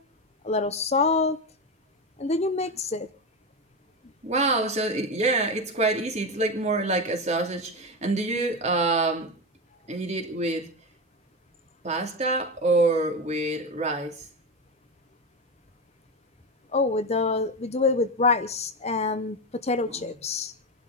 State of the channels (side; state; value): both; normal; correlation 0.16